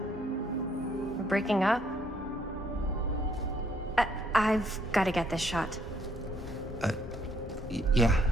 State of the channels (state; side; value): normal; both; correlation 0.68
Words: we're breaking up? I've got to get this shot. Yeah,